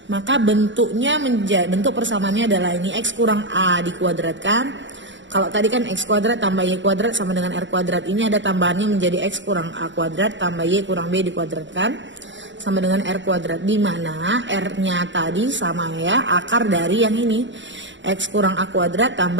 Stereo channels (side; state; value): left; late; 0.54 ms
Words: Maka bentuk persamaannya adalah ini, X kurang A dikuadratkan. Kalau tadi kan X kuadrat tambah Y kuadrat sama dengan R kuadrat. Ini ada tambahannya menjadi X kurang A kuadrat tambah Y kurang B dikuadratkan sama dengan R kuadrat. Di mana R-nya tadi sama ya, akar dari yang ini. X kurang A kuadrat